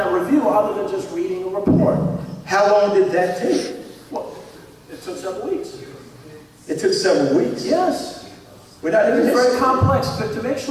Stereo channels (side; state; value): both; identical; correlation 1.00